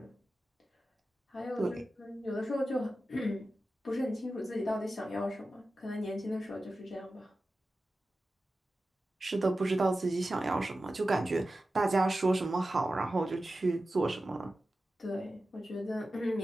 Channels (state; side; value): normal; both; correlation 0.93